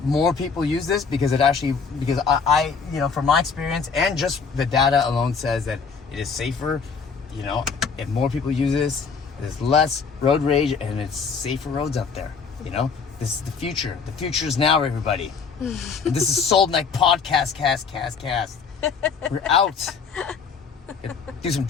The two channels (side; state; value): right; quieter; 5.5 dB